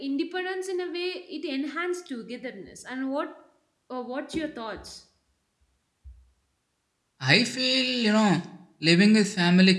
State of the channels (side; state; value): both; identical; correlation 1.00